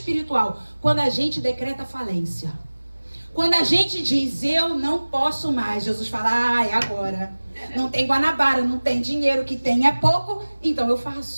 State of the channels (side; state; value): both; inverted; correlation -1.00